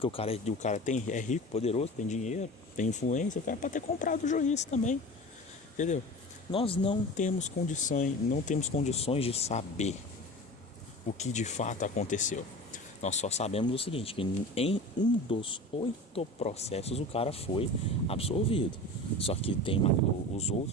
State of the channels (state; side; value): normal; both; correlation 0.34